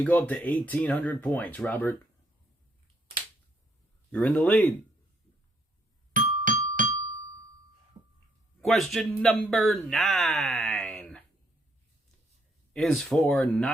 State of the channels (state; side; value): normal; both; correlation 0.71